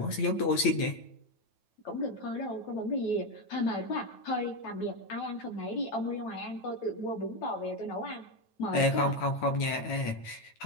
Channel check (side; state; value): right; late; 9.1 ms